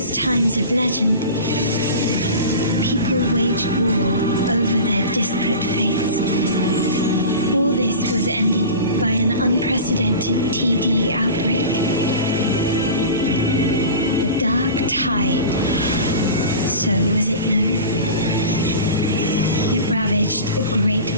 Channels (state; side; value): inverted; both; correlation -0.34